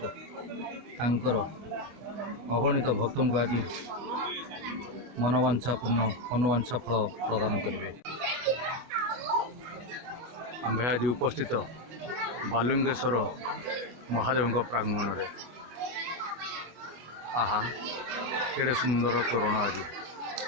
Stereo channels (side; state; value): left; late; 25 ms